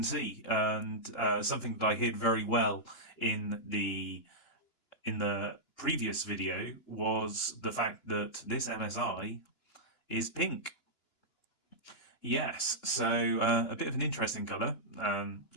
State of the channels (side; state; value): right; late; 2.9 ms